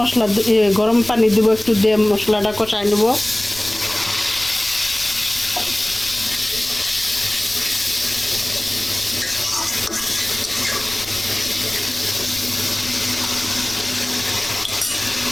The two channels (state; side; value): noise; left; rumble, 19 dB below the sound